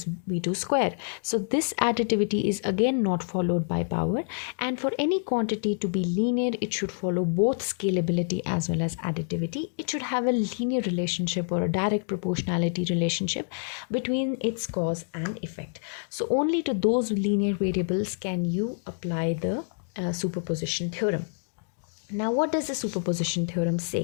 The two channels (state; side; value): silent; right; digital silence